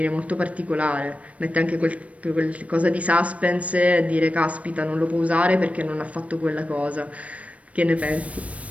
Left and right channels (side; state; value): left; late; 0.065 ms